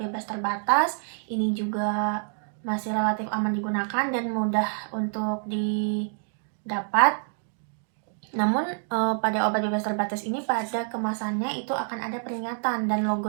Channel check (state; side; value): silent; left; 60 dB below the other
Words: terbatas. Ini juga masih relatif aman digunakan dan mudah untuk didapat. Namun pada obat bebas terbatas ini, pada kemasannya itu akan ada peringatan, dan logo